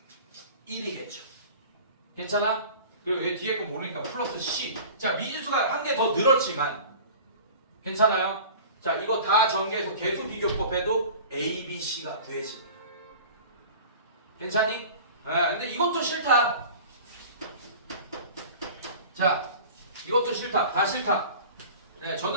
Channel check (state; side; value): inverted; both; correlation -0.40